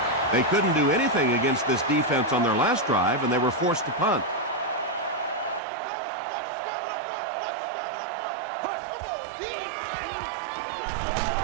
They couldn't do anything against this defense on their last drive, and they were forced to punt.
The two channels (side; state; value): left; drops out; at 5.6 s